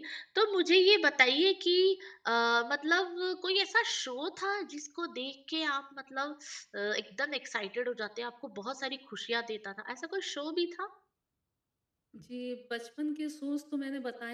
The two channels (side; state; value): both; identical; correlation 1.00